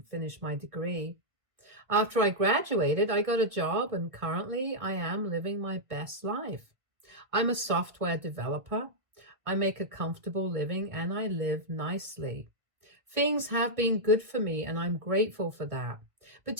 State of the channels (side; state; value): left; late; 1.5 ms